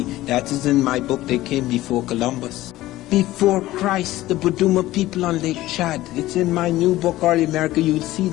That is in my book, They Came Before Columbus. Before Christ, the Buduma people on Lake Chad. It's in my new book, Early America. You'll see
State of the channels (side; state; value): right; quieter; 16.3 dB